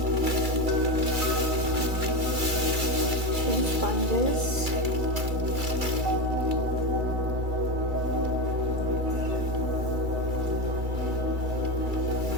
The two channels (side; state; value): left; late; 2.3 ms